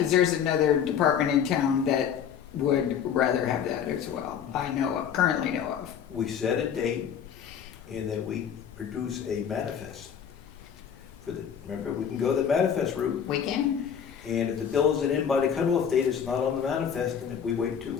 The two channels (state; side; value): quieter; right; 8.1 dB